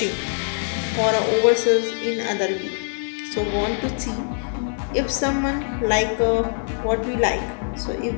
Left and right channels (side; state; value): right; silent; 58 dB below the other